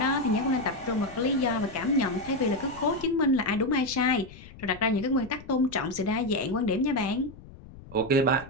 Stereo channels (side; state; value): left; noise; rumble, 18 dB below the sound